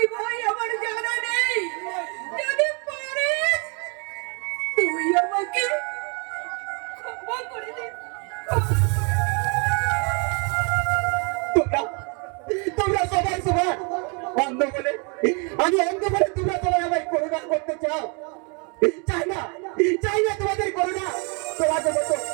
ভাই, আমার জানা নেই। যদি পারিস তুই আমাকে ক্ষমা করে দে। তোমরা তোমরা সবাই সবার অন্ধ বলে, আমি অন্ধ বলে তোমরা সবাই আমায় করুণা করতে চাও। চাই না তোমাদের করুণা।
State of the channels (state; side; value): quieter; left; 34.7 dB